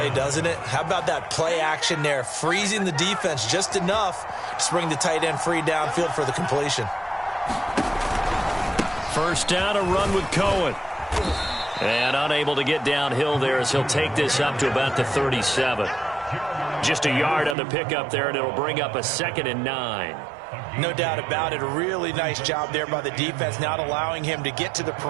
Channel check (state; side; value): drops out; left; at 17.6 s